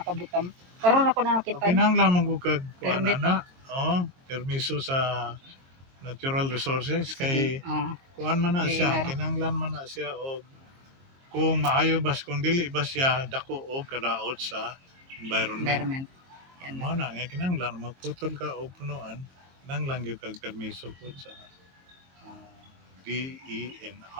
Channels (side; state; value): left; late; 22 ms